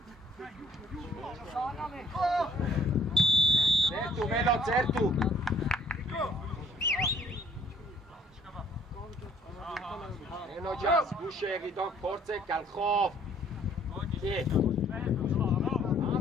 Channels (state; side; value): normal; both; correlation 0.59